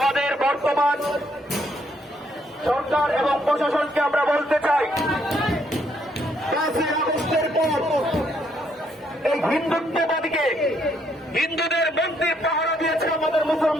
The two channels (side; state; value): both; normal; correlation 0.71